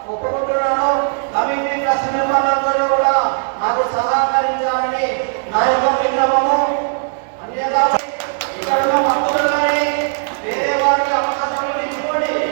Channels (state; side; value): silent; left; digital silence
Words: ఒప్పుకుంటున్నాను. కమిటీ ట్రస్ట్ మెంబర్లందరూ కూడా నాకు సహకరించాలని నా యొక్క విన్నపము. అన్యదా ఇక్కడ ఉన్న భక్తులు కానీ వేరే వారికి అవకాశం ఇచ్చుకోండి.